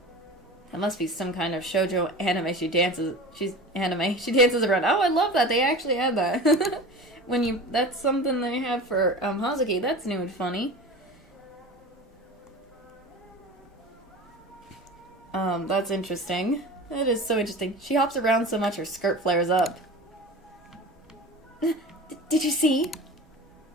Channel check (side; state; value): both; normal; correlation 0.34